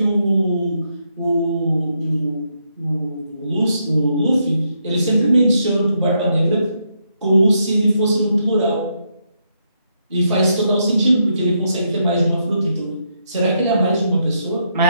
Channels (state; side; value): inverted; both; correlation -0.78